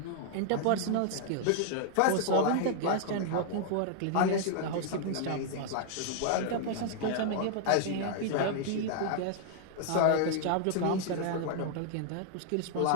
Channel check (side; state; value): both; different; correlation -0.01